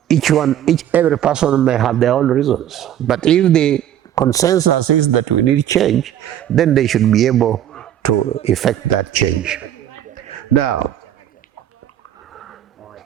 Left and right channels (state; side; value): quieter; left; 11.1 dB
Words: every person may have their own reasons. But if the consensus is that we need change, then they should be able to effect that change. Now,